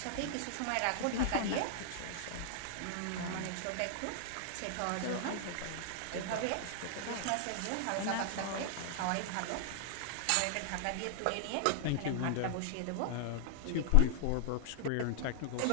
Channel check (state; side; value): different; both; correlation -0.01